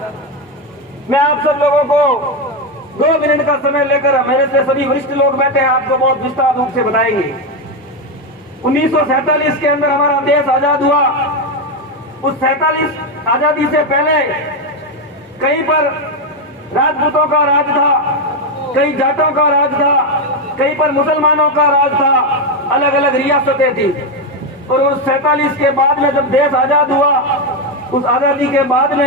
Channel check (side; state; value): both; normal; correlation 0.08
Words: मैं आप सब लोगों को 2 मिनट का समय लेकर, मेरे से सभी वरिष्ठ लोग बैठे हैं, आपको बहुत विस्तार रूप से बताएंगे। 1947 के अंदर हमारा देश आजाद हुआ। उस 47 आजादी से पहले कहीं पर राजपूतों का राज था, कहीं जाटों का राज था, कहीं पर मुसलमानों का राज था, अलग अलग रियासतें थी। और उस 47 के बाद में जब देश आजाद हुआ, उस आजादी के बाद